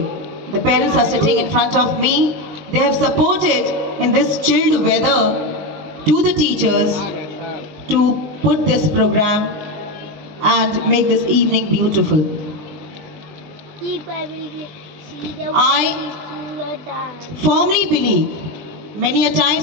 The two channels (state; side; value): late; left; 20 ms